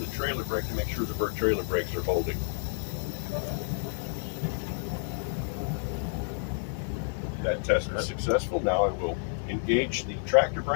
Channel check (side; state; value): right; silent; digital silence